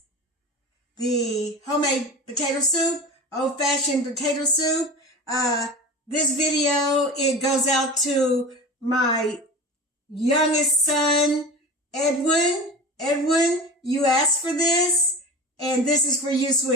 the homemade potato soup, old-fashioned potato soup. This video, it goes out to my youngest son, Edwin. Edwin, you asked for this, and this is for you,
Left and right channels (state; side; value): normal; both; correlation 0.32